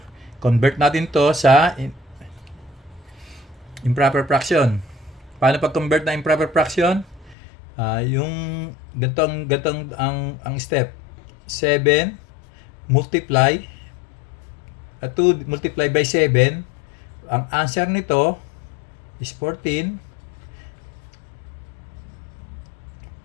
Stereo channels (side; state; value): right; drops out; at 7.4 s